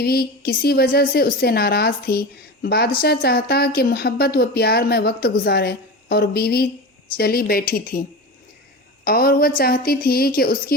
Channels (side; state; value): both; normal; correlation 0.27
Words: کسی وجہ سے اس سے ناراض تھی۔ بادشاہ چاہتا کہ محبت و پیار میں وقت گزارے، اور بیوی چلی بیٹھی تھی اور وہ چاہتی تھی کہ اس